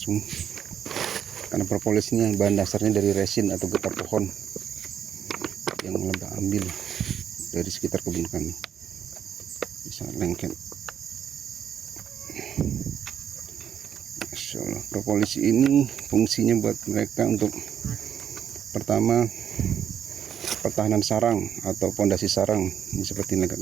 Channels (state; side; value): quieter; left; 9.0 dB